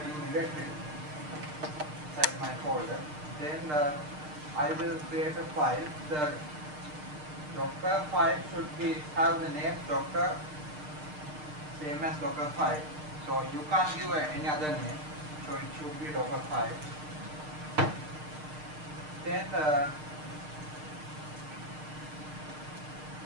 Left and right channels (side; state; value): left; late; 6.6 ms